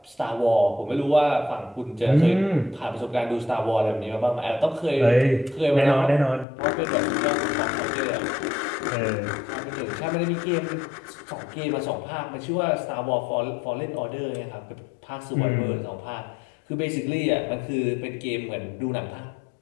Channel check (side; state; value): right; drops out; at 6.5 s